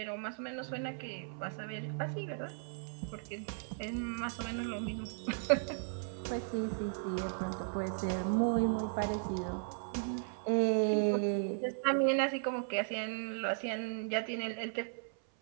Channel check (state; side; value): silent; left; 54 dB below the other